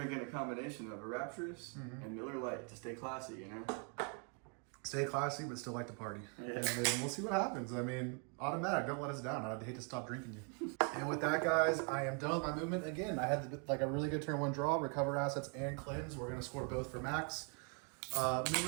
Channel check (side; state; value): left; quieter; 38.5 dB